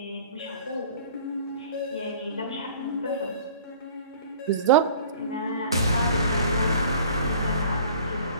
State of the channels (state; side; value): inverted; both; correlation -0.48